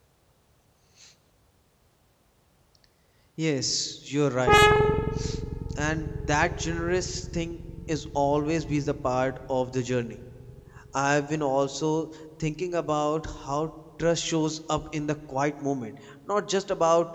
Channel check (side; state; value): both; identical; correlation 1.00